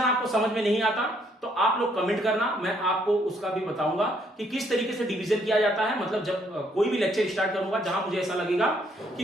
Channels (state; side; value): normal; both; correlation 0.69